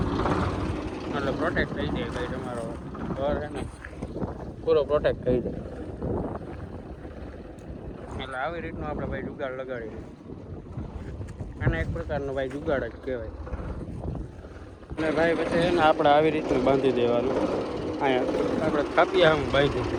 એટલે પ્રોટેક્ટ થઈ જાય ભાઈ. તમારો ઘર છે ને પૂરો પ્રોટેક્ટ થઈ જાય. એટલે આવી રીતનું આપણે ભાઈ જુગાડ લગાડીએ. આને એક પ્રકારનો ભાઈ જુગાડ જ કહેવાય. અને ભાઈ પછી એને આપણે આવી રીતનું બાંધી દેવાનું. અહીંયા આપણે કાપિયા આમ બાંધી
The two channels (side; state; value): both; identical; correlation 1.00